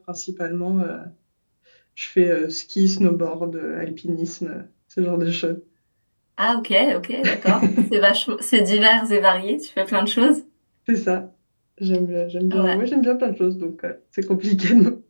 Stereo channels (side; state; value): both; inverted; correlation -1.00